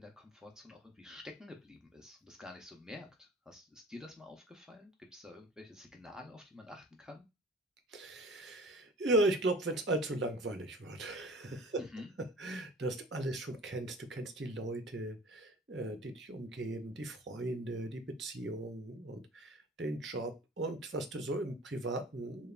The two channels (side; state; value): both; normal; correlation 0.44